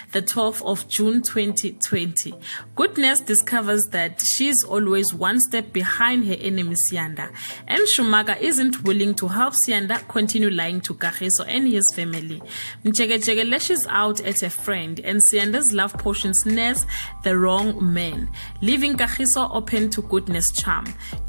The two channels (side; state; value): both; inverted; correlation -1.00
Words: the 12th of June 2020. Goodness discovers that she's always one step behind her enemy Siyanda, and Shumaga isn't willing to help Siyanda continue lying to Kagiso and his family. Mchegechege lashes out at a friend, and Siyanda's love potion snares the wrong man, leaving Kagiso open to goodness charm.